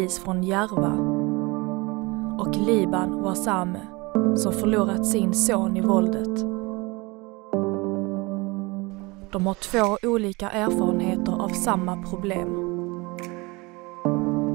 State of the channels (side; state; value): left; quieter; 25.0 dB